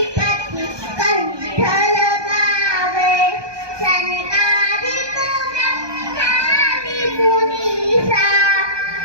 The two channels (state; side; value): late; left; 1.2 ms